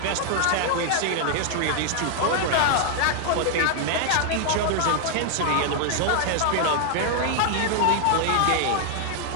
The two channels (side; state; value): both; different; correlation 0.00